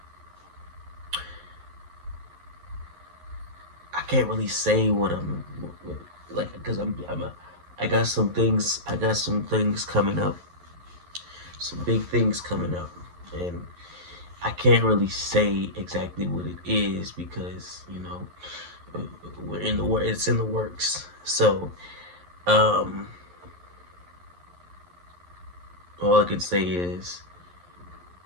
I can't really say what I'm like, because I got some things coming up, some big things coming up, and I can't really say exactly what it is because we're in the work. It's in the works. So all I can say is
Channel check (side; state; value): left; late; 11 ms